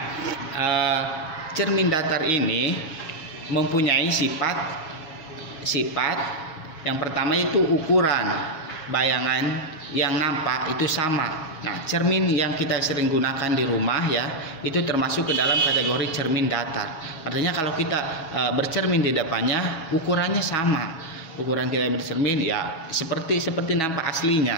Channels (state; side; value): late; right; 6.2 ms